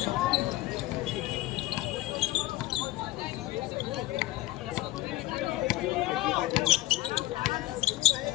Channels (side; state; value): right; quieter; 17.2 dB